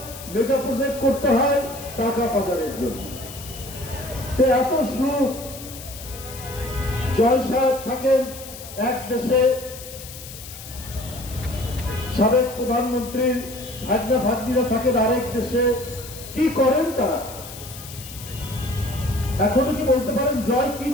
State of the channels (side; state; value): left; noise; hiss, 14 dB below the sound